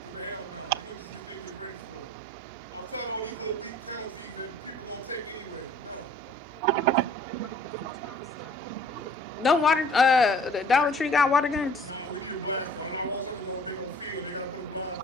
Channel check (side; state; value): right; noise; hum, 23 dB below the sound